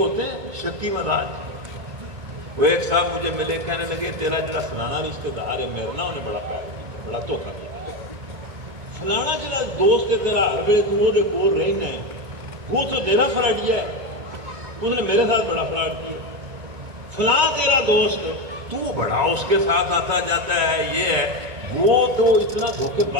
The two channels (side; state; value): left; late; 2.2 ms